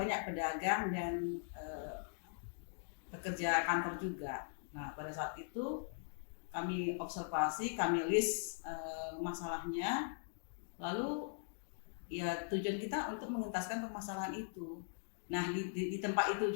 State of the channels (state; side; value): silent; right; digital silence